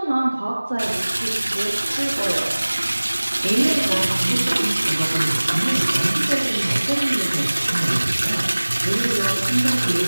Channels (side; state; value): both; inverted; correlation -1.00